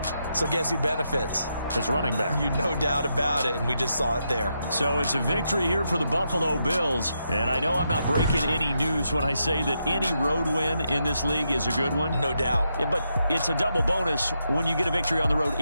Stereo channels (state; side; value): inverted; both; correlation -0.82